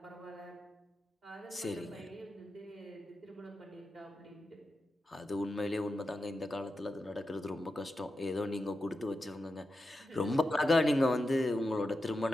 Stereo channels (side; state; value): both; normal; correlation 0.90